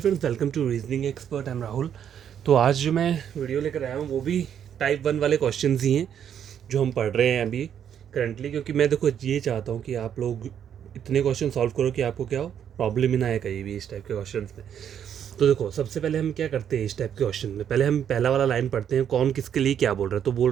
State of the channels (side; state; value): left; quieter; 9.0 dB